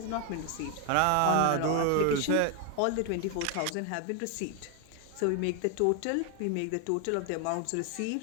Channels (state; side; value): different; both; correlation 0.00